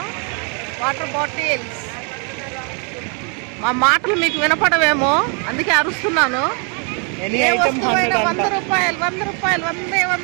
Water bottles. మా మాటలు మీకు వినపడవేమో, అందుకే అరుస్తున్నాను. ఏ వస్తువైనా 100 రూపాయలు 100 రూపాయలు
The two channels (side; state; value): left; quieter; 37.0 dB